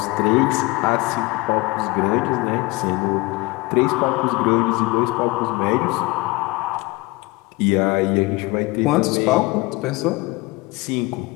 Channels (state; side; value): quieter; right; 23.2 dB